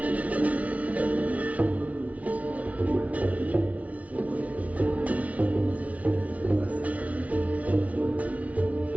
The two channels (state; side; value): late; left; 0.068 ms